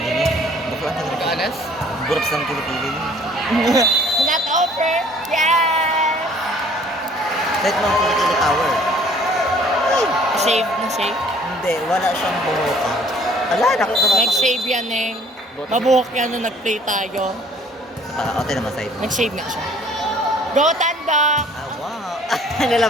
niya. Bakla ang ganda ng Ganas? Burap sa ng kilikili niya. Not over! Yes! Kahit mga kilikili power. Shave na shave? Hindi, wala siyang buhok. Ala, nakita ba? Nag-shave yan eh. Mabuhok yan nung nag-play tayo. O, tayo naman side. Nag-shave nga siya. Go Tandok! Ah, wow.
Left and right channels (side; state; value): both; normal; correlation 0.56